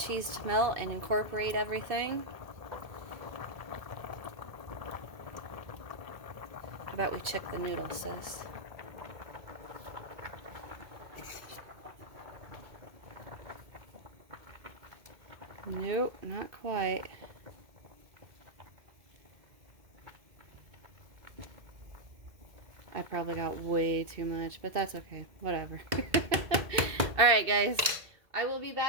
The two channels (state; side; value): late; left; 2.2 ms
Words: to melt and incorporate everything. How about we check the noodles, sis? Nope, not quite. I probably got way too much, but that's okay. Whatever. Alright guys, I will be